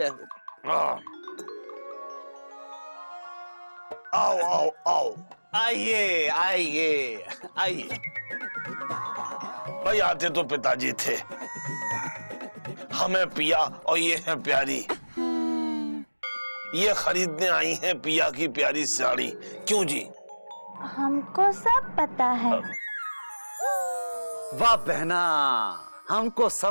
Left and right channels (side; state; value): both; inverted; correlation -1.00